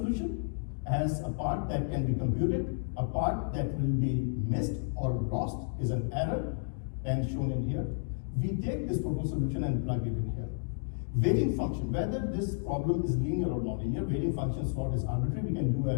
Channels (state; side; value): silent; right; digital silence